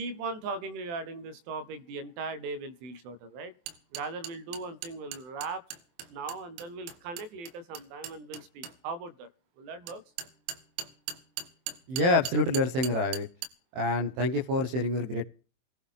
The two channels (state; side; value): late; left; 23 ms